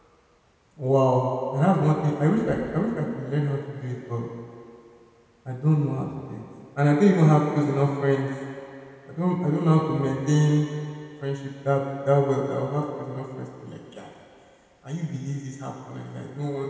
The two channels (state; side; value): identical; both; correlation 1.00